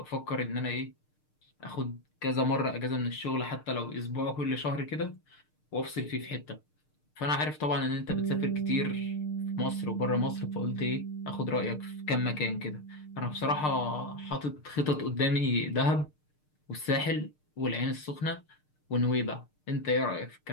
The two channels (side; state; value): right; late; 6.6 ms